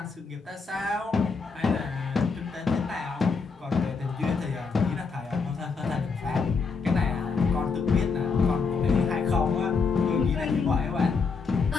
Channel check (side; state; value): right; quieter; 4.9 dB